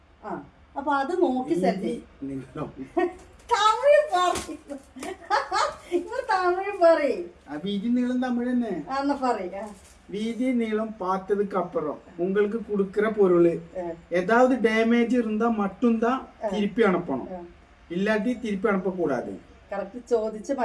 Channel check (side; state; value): both; identical; correlation 1.00